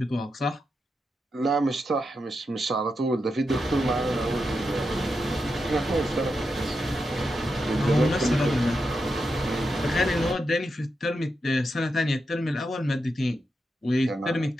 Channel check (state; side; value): normal; both; correlation 0.86